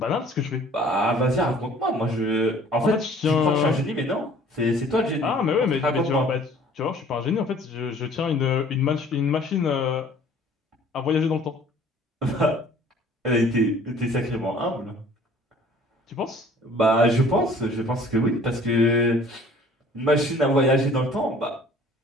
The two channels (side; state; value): both; normal; correlation 0.52